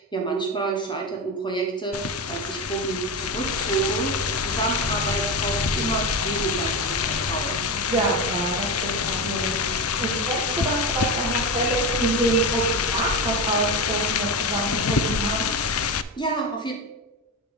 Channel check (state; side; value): normal; both; correlation 0.19